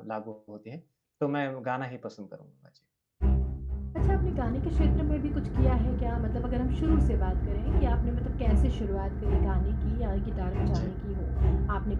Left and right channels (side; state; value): both; identical; correlation 1.00